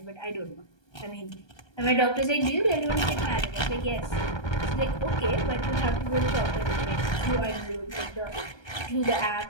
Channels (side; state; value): right; late; 1.3 ms